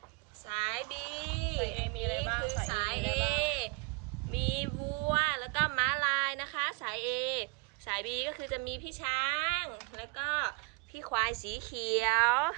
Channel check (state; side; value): quieter; left; 29.2 dB